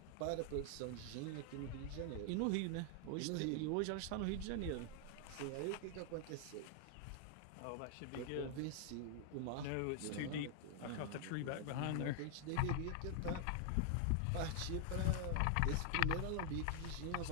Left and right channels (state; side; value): different; both; correlation 0.00